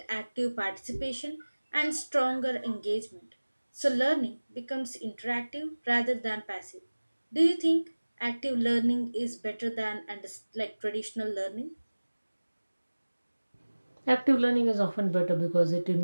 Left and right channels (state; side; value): inverted; both; correlation -1.00